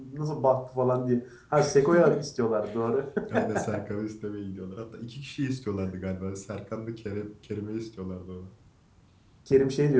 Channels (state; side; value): identical; both; correlation 1.00